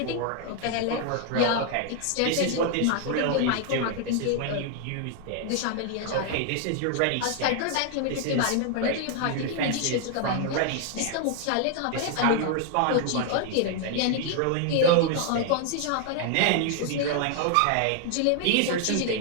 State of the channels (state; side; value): different; both; correlation 0.00